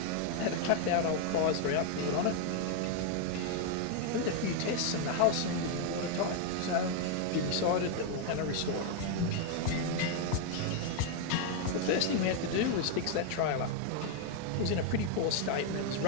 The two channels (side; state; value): both; different; correlation 0.01